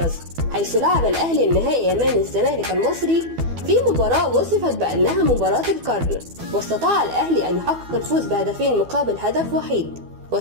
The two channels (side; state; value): left; late; 12 ms